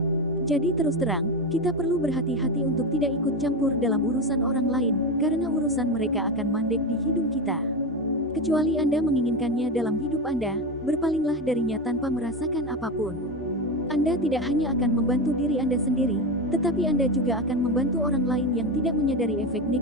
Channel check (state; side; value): normal; both; correlation 0.17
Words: Jadi terus terang, kita perlu berhati-hati untuk tidak ikut campur dalam urusan orang lain, karena urusan mereka akan mandek di hidung kita. Kecuali Anda menginginkannya dalam hidup Anda, berpalinglah darinya tanpa merasakan apapun. Anda tidak hanya akan membantu diri Anda sendiri, tetapi Anda juga akan membantu orang lain yang tidak menyadari efek